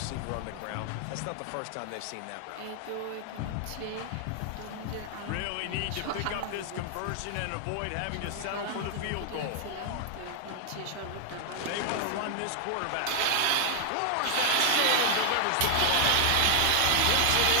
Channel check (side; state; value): both; different; correlation 0.00